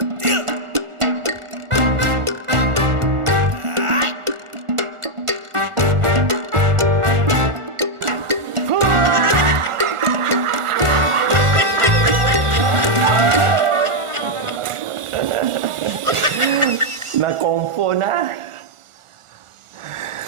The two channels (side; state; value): left; late; 1.4 ms